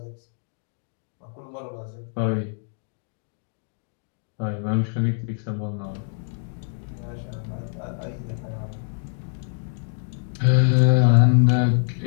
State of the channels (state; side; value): silent; right; digital silence